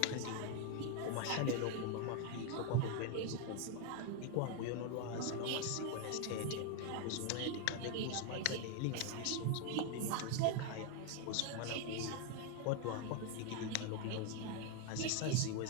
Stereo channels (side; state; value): both; different; correlation 0.01